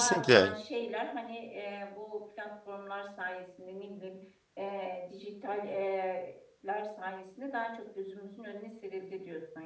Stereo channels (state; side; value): identical; both; correlation 1.00